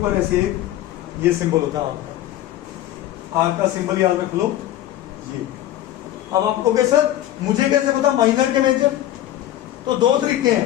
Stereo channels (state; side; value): quieter; right; 13.3 dB